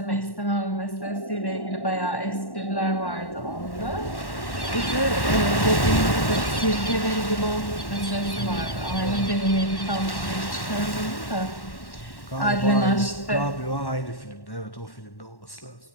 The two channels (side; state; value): right; late; 1.1 ms